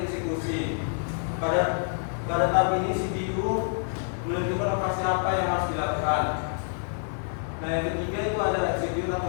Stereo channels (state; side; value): silent; right; digital silence